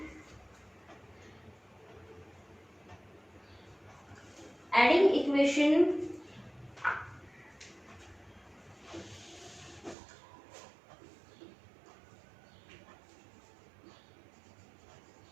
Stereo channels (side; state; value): left; drops out; at 10.0 s